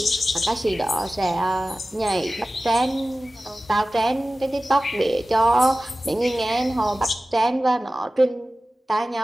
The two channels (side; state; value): both; normal; correlation 0.96